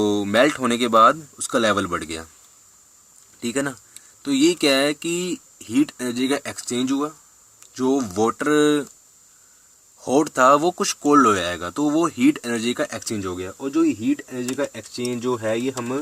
मेल्ट होने के बाद उसका लेवल बढ़ गया। ठीक है ना, तो ये क्या है कि हीट एनर्जी का एक्सचेंज हुआ, जो वाटर हॉट था वो कुछ कोल्ड हो जाएगा, तो वो हीट एनर्जी का एक्सचेंज हो गया। और जो ये हीट एनर्जी का एक्सचेंज जो है ये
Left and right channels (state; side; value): identical; both; correlation 1.00